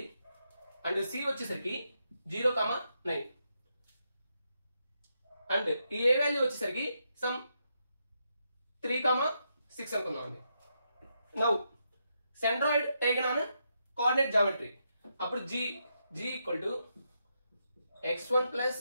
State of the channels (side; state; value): both; inverted; correlation -0.82